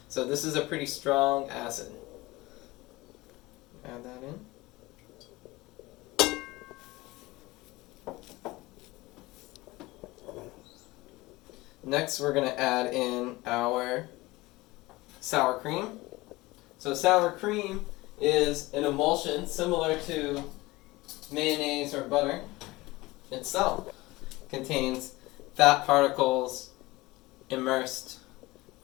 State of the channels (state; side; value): quieter; right; 20.7 dB